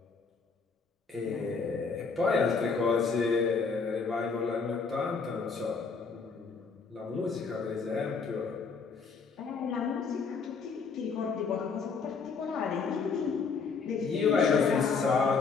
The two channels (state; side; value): quieter; right; 5.0 dB